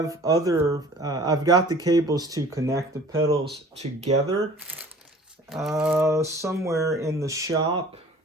other, I've got the cables to connect the pedals together somewhere in the shop.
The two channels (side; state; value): both; normal; correlation 0.48